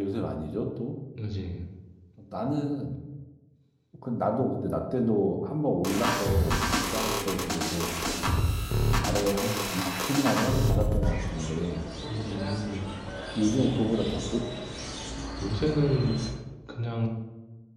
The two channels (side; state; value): both; identical; correlation 1.00